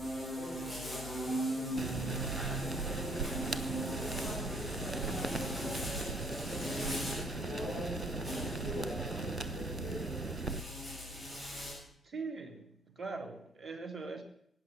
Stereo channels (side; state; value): both; normal; correlation 0.62